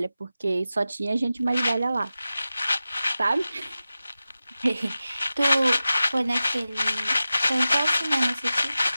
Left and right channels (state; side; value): inverted; both; correlation -0.94